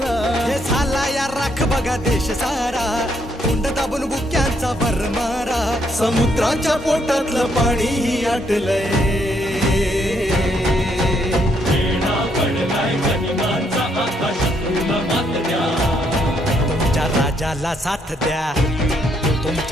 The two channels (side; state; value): both; normal; correlation 0.73